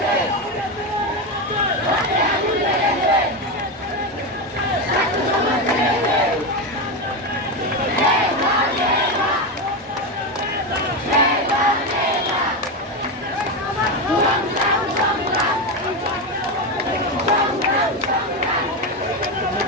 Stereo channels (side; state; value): both; normal; correlation 0.13